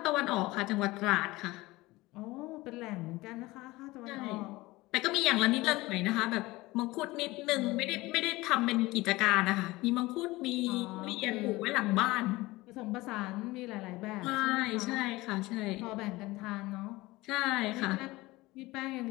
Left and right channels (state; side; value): quieter; right; 20.1 dB